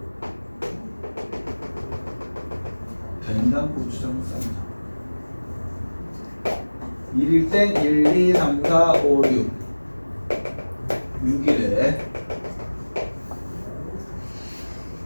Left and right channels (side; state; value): both; inverted; correlation -1.00